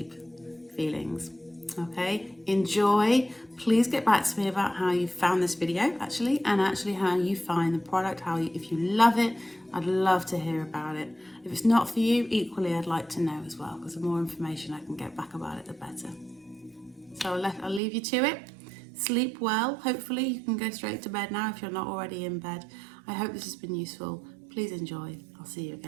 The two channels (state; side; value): drops out; left; at 17.8 s